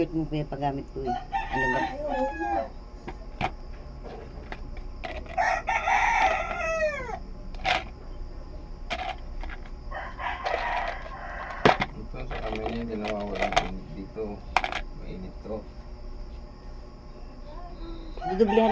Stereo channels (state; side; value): identical; both; correlation 1.00